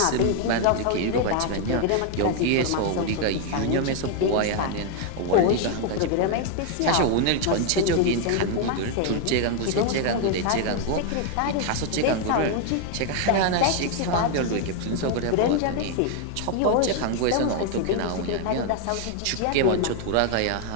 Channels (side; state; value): both; different; correlation 0.00